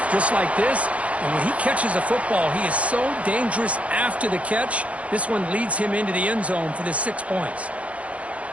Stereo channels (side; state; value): left; late; 0.065 ms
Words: just like this. And when he catches a football, he is so dangerous after the catch. This one leads him into the end zone for the 6 points.